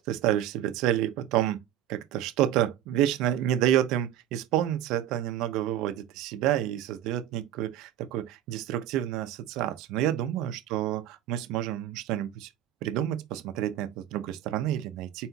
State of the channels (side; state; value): left; quieter; 11.7 dB